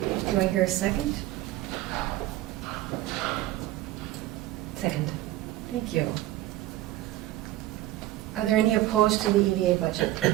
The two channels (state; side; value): quieter; left; 15.6 dB